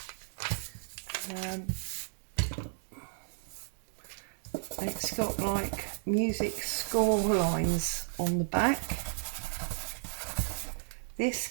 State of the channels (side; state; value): left; silent; digital silence